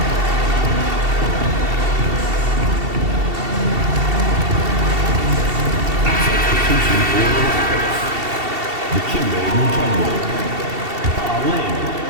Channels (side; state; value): left; late; 2.7 ms